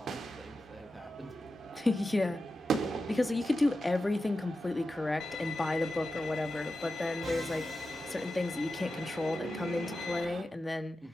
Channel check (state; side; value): normal; both; correlation 0.91